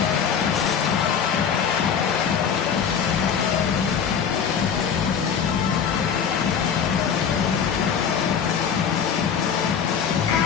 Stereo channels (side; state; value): right; quieter; 7.3 dB